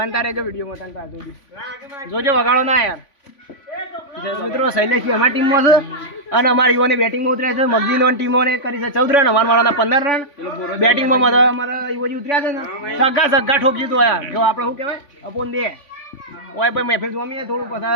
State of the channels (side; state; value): right; late; 3.5 ms